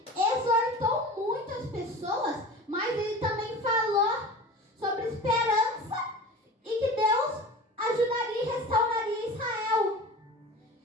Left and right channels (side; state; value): both; normal; correlation 0.35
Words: exortou muitas pessoas, mas ele também falou sobre esperança e que Deus ajudaria e restauraria Israel.